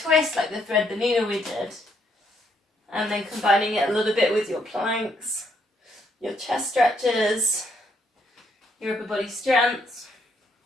like the thread the needle we did. And then combining it a little bit with your planks, your chest stretches, your upper body strength.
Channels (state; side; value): normal; both; correlation 0.73